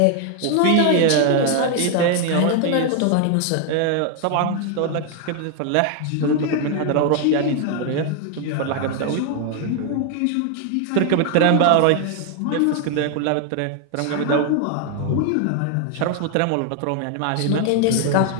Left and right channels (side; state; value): both; different; correlation 0.00